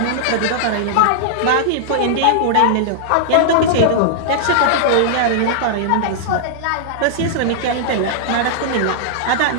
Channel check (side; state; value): both; different; correlation -0.01